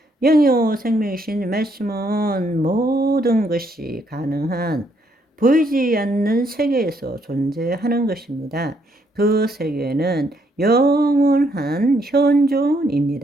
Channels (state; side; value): normal; both; correlation 0.72